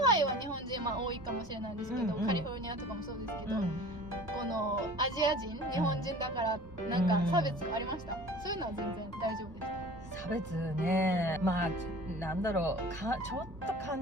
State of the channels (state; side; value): normal; both; correlation 0.43